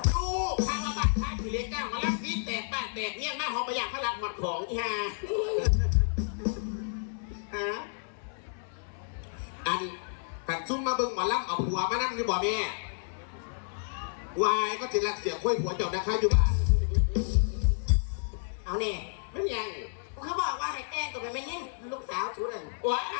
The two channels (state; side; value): silent; right; 57 dB below the other